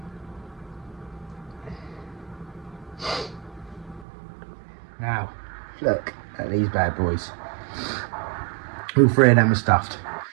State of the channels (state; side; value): drops out; left; at 4.0 s